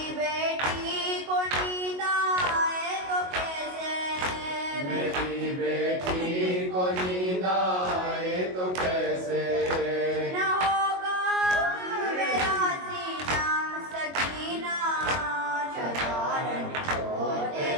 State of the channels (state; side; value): late; left; 22 ms